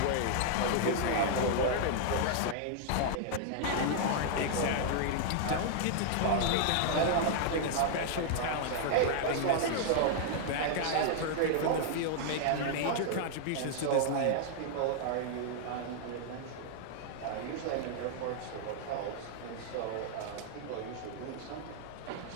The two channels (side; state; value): both; different; correlation -0.01